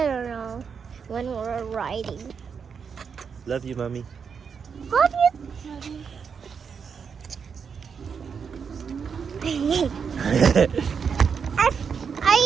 don't know when we're riding. Love you, Mommy. Love you. I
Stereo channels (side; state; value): left; quieter; 6.4 dB